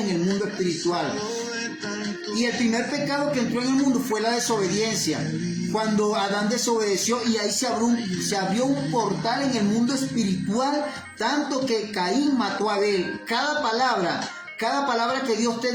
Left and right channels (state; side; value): identical; both; correlation 1.00